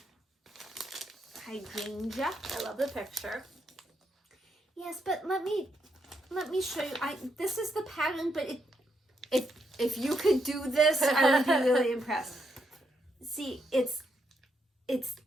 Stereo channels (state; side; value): normal; both; correlation 0.79